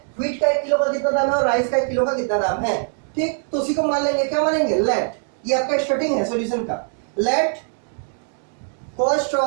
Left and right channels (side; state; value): left; silent; 64 dB below the other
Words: व्हीट का 1 किलो का कितना दाम है और राइस का 1 किलो का कितना दाम है। ठीक, तो उसी को मान लेंगे, क्या मानेंगे, लेट, ये आपका स्टार्टिंग है सॉल्यूशन का, let cost